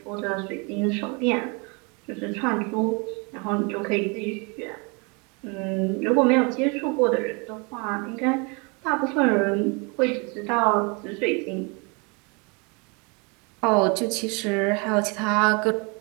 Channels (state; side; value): quieter; left; 31.3 dB